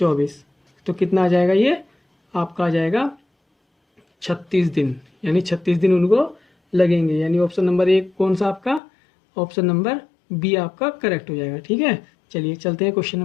तो कितना आ जाएगा, ये आपका आ जाएगा 36 दिन, यानी 36 दिन उनको लगेंगे। यानी ऑप्शन नंबर 1 कौन सा आपका, ऑप्शन नंबर बी आपका करेक्ट हो जाएगा। ठीक है, चलिए चलते हैं क्वेश्चन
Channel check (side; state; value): right; drops out; at 8.8 s